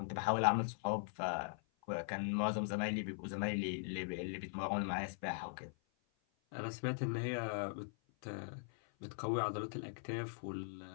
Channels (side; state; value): right; silent; 51 dB below the other